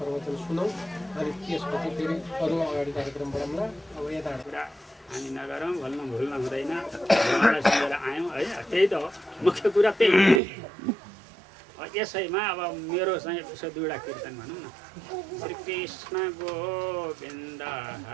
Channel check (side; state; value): left; drops out; at 10.4 s